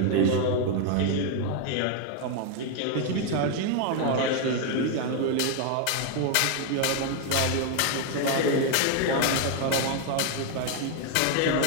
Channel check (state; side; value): different; both; correlation 0.01